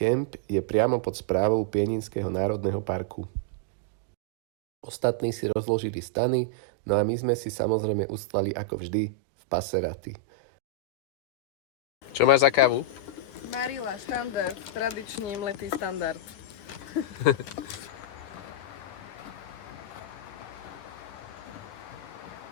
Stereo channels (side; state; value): right; late; 10 ms